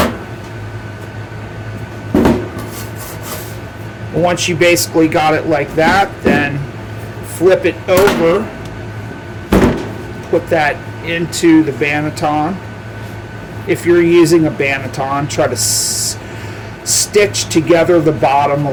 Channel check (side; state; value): both; identical; correlation 1.00